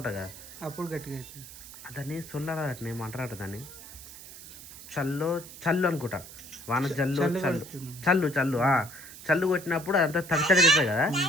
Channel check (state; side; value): noise; right; hiss, 15 dB below the sound